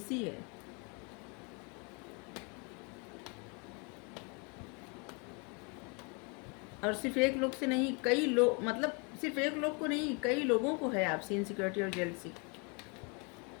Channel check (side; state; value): right; quieter; 33.1 dB